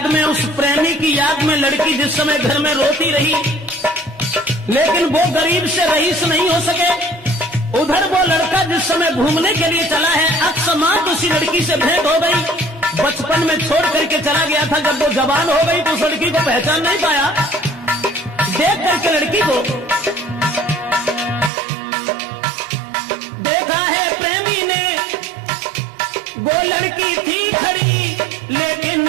में, उस प्रेमी की याद में लड़की जिस समय घर में रोती रही, लेकिन वो गरीब से रईस नहीं हो सके। उधर वो लड़का जिस समय घूमने के लिए चला है, अकस्मात उसी लड़की से भेंट हो गई। बचपन में छोड़ करके चला गया था, जब वो जवान हो गई तो उस लड़की को पहचान नहीं पाया। देख करके लड़की को देखा है प्रेमी ने, वो लड़की थी खड़ी, लेकिन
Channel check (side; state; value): left; drops out; at 21.5 s